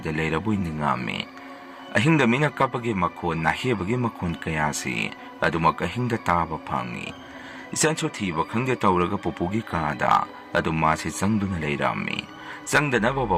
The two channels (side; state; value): both; identical; correlation 1.00